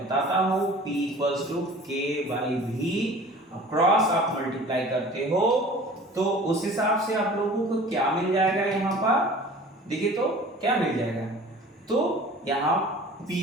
हूं। P equals to K/V, cross आप मल्टीप्लाई करते हो तो उस हिसाब से आप लोगों को क्या मिल जाएगा, यहां पर देखिए तो क्या मिल जाएगा, तो यहां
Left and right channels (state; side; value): normal; both; correlation 0.44